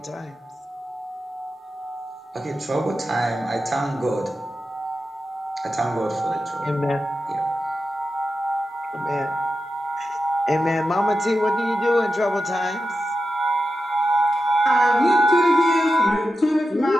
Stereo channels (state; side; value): normal; both; correlation 0.90